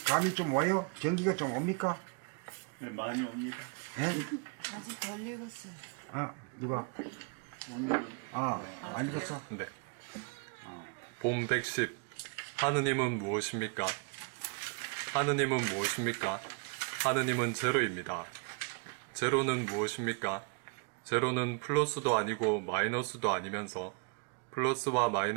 감이 좀 와요? 경기가 좀 옵니까? 네, 많이 옵니다. 예? 아직 덜 읽었어요. 아, 누가? 안 읽었어? 네. 봄 110. 하느님은 무엇입니까? 하느님은 무엇입니까? 하느님은 제로입니다. 제로는 무엇입니까? 제로는 플러스도 아니고 마이너스도 아니면서 플러스와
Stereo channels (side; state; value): left; quieter; 37.0 dB